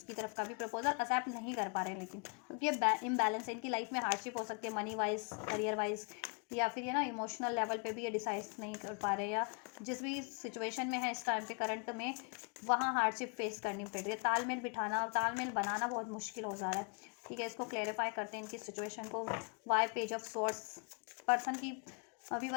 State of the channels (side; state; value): right; quieter; 37.1 dB